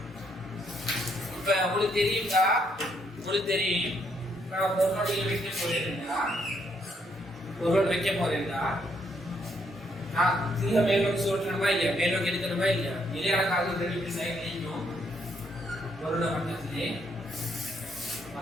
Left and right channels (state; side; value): normal; both; correlation 0.73